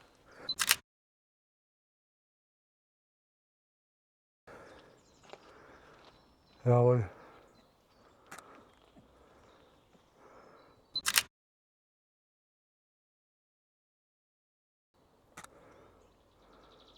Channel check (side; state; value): both; identical; correlation 1.00